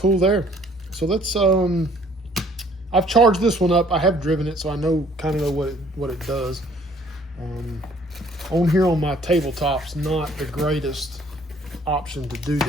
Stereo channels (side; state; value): both; normal; correlation 0.59